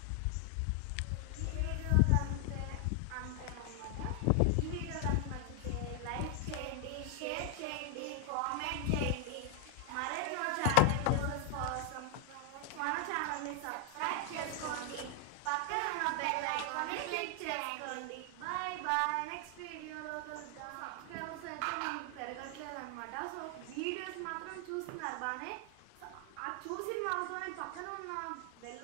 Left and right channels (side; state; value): both; different; correlation 0.00